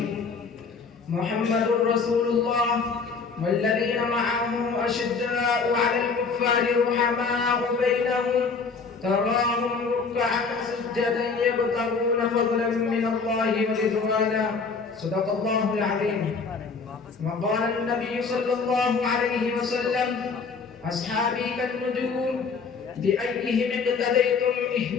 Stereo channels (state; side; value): quieter; right; 4.9 dB